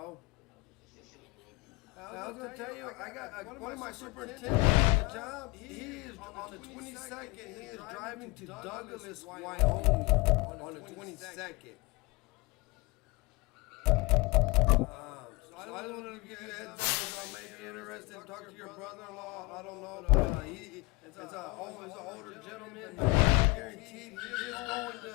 I was gonna tell you, I got one of my superintendents on the job. He is on the 22nd. He is driving to Douglas, Wyoming, on the 22nd. So I just wanted to give you a heads up. I may be interested in talking to your brother-in-law. I don't know, but it's an older gentleman. Guaranteed he is going to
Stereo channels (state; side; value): quieter; right; 22.7 dB